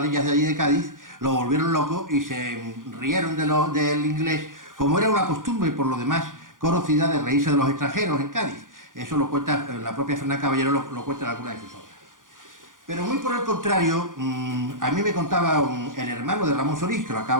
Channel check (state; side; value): late; left; 0.89 ms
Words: de allí de Cádiz, lo volvieron loco y se rieron del inglés, como era una costumbre por lo demás conocida de reírse de los extranjeros en Cádiz. Eso lo cuenta la propia Fernán Caballero, lo cuenta en alguna de sus obras. Pero muy por el contrario, a mí me contaba el hermano de Ramón Solís, que lo